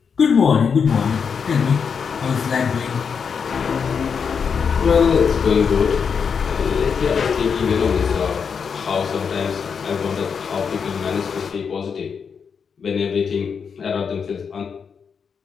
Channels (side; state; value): right; quieter; 6.3 dB